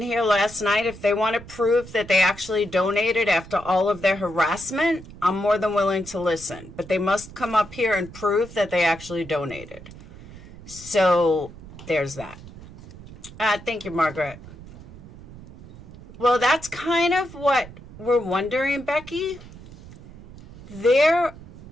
here last night, if they want to prove that they actually donated after all of their harassment, I'm more than willing to listen. But they must come up here and prove that they actually donated. So there's that. Thank you, Margaret. Well, that's kind of what we're wondering, Becky. There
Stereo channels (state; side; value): noise; right; rumble, 17 dB below the sound